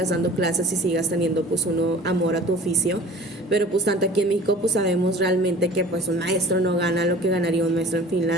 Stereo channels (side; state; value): both; normal; correlation 0.45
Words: dando clases y sigas teniendo pues amor a tu oficio. Pero pues tanto aquí en México pues sabemos realmente que pues un maestro no gana lo que ganaría un maestro en